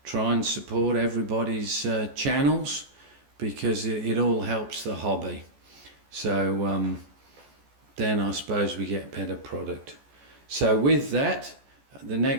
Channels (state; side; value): late; left; 14 ms